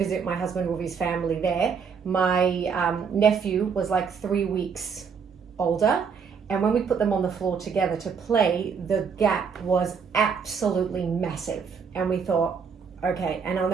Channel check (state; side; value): quieter; left; 6.2 dB